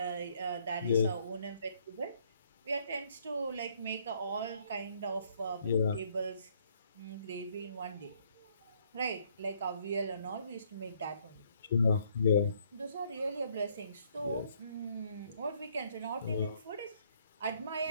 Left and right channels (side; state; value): both; inverted; correlation -0.66